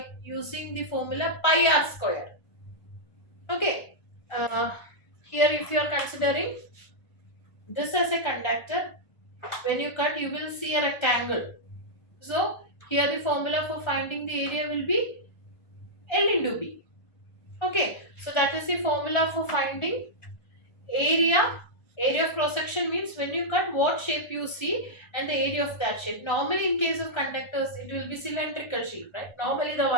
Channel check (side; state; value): right; late; 1.3 ms